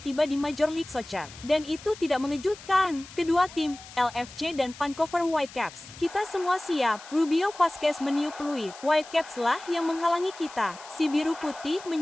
di Major League Soccer. Dan itu tidak mengejutkan. Kedua tim, LFC dan Vancouver Whitecaps, kita semua siap. Rubio Vasquez meniup peluit. Whitecaps lah yang menghalangi kita. Si biru putih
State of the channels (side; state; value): left; noise; hiss, 17 dB below the sound